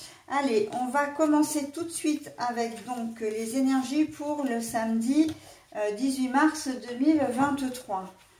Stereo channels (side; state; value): both; identical; correlation 1.00